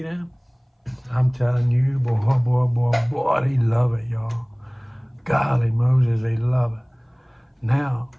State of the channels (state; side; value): identical; both; correlation 1.00